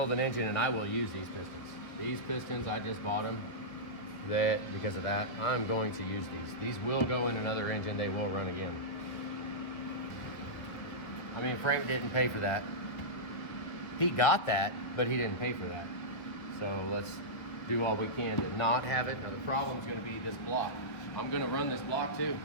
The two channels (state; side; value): late; right; 1.5 ms